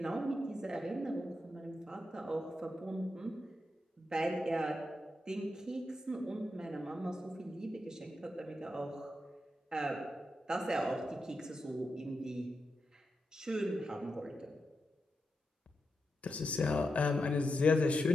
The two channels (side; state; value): both; normal; correlation 0.87